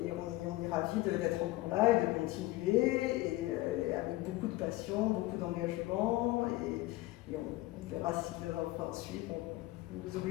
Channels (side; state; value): right; quieter; 18.4 dB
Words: on est ravis d'être encore là et de continuer, et avec beaucoup de passion, beaucoup d'engagement, et on verra si le vin suit, on ne vous